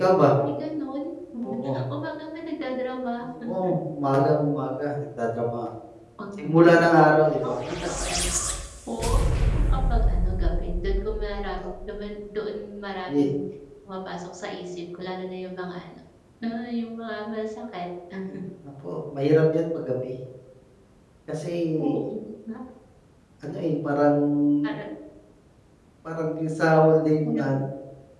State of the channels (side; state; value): both; identical; correlation 1.00